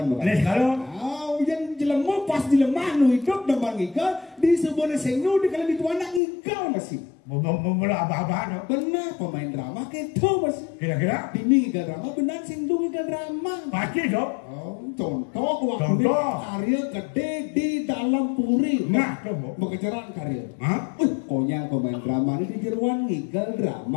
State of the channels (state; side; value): drops out; right; at 6.2 s